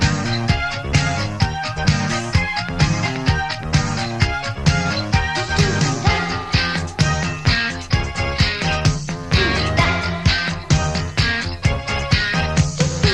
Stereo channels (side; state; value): both; identical; correlation 1.00